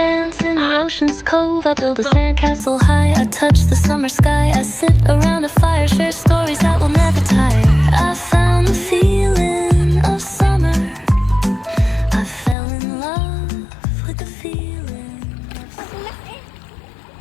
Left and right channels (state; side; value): drops out; right; at 12.6 s